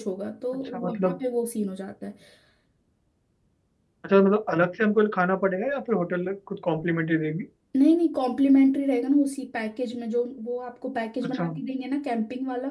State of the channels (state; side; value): identical; both; correlation 1.00